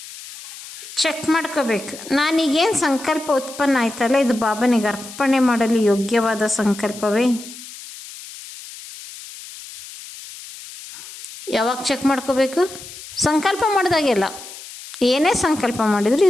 ಚೆಕ್ ಮಾಡ್ಕೋಬೇಕು. ನಾನೀಗೇನು ಸಂಕಲ್ಪ ಉತ್ಪನ್ನ ಆಯ್ತಲ್ಲ, ಇದು ಬಾಬನಿಗೆ ಅರ್ಪಣೆ ಮಾಡಲು ಯೋಗ್ಯವಾದ ಸಂಕಲ್ಪವೇ? ಯಾವಾಗ ಚೆಕ್ ಮಾಡ್ಕೋಬೇಕು? ಸಂಕಲ್ಪ ಮಾಡಿದಾಗೆಲ್ಲ. ಏನೇ ಸಂಕಲ್ಪ ಮಾಡಿದ್ರು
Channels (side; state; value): left; noise; hiss, 15 dB below the sound